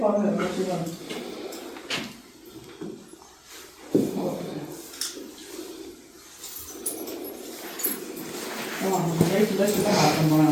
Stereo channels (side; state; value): both; identical; correlation 1.00